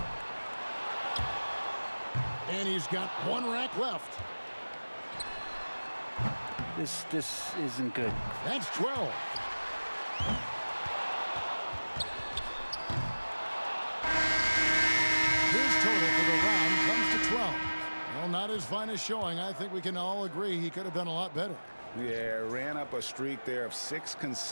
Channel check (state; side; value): inverted; both; correlation -1.00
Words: And he's got 1 rack left. This isn't good. That's 12. His total for the round comes to 12. Well, not his finest showing. I think we can all agree he could have done a lot better. Yeah, ran up a streak there of 6